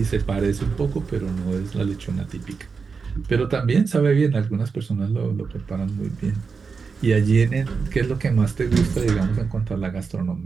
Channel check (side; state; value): left; quieter; 5.1 dB